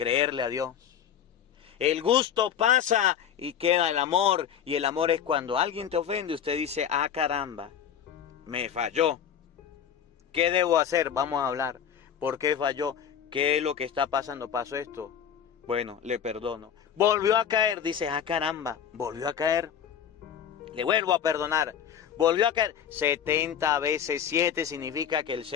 a Dios. El gusto pasa y queda el amor. Y el amor es cuando alguien te ofende, usted dice: ah, caramba, me falló. ¿Qué debo hacer? Vamos a hablar. ¿Por qué falló? ¿Qué es lo que está pasando? ¿Pasó esto? Bueno, le perdono. Volvió a caer, dice: ah, caramba, volvió a caer. Le vuelvo a perdonar. Volvió a caer. 70 veces 7 significa que el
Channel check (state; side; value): quieter; right; 8.7 dB